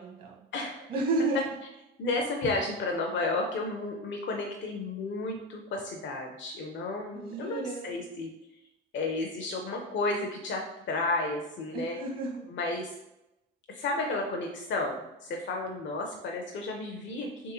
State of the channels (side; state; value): both; normal; correlation 0.16